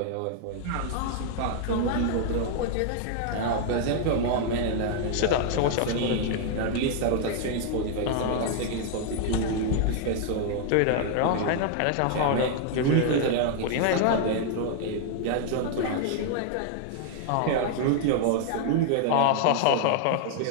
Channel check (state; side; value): different; both; correlation 0.00